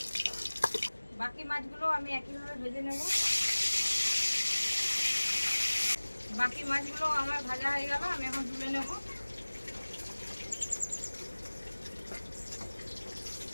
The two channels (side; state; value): both; inverted; correlation -1.00